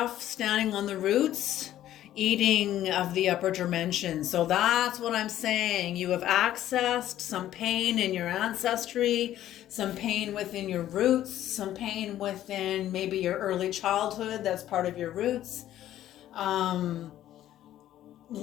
standing on the roots, eating of the upper dimension. So that's what I'm saying. You have accessed some pain in your ancestry, some pain within your roots, some pain within maybe your early childhood. That's part of your roots.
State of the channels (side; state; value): right; quieter; 12.6 dB